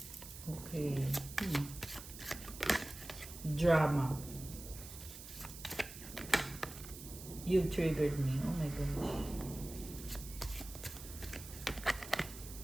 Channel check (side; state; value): right; noise; hiss, 13 dB below the sound